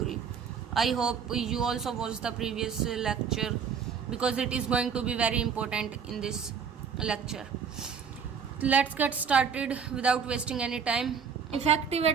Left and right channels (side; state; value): left; quieter; 6.7 dB